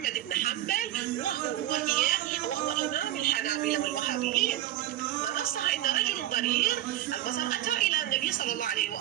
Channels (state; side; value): quieter; left; 13.1 dB